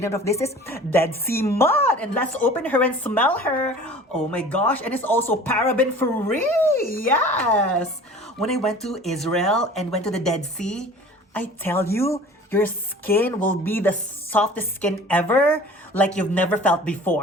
of this is Dead Sea Mud. And let's open her and smell her. Oh my gosh, and it's also paraben free. Yes! When I went to Israel and went to the Dead Sea, I tell you, your skin will be the softest skin ever, like you've never felt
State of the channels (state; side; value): normal; both; correlation 0.44